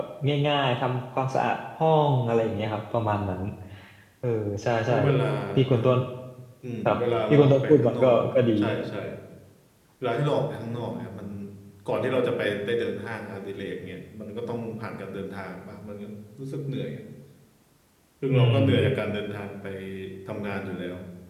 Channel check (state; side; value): identical; both; correlation 1.00